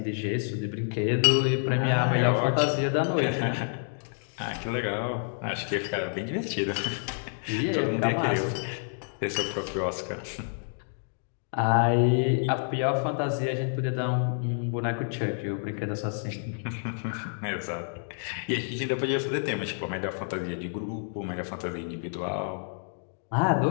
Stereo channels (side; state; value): right; silent; digital silence